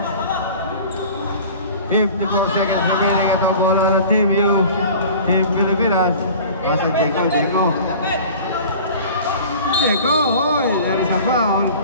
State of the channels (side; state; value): both; inverted; correlation -0.42